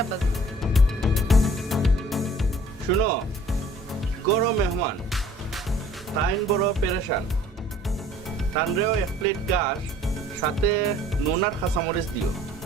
আব্বাজান। শুনো, গরো মেহমান তাইন বড় পেরেশান, তানরেও 1 প্লেট ঘাস সাথে নুন আর কাঁচামরিচ দিও।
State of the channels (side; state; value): both; normal; correlation 0.53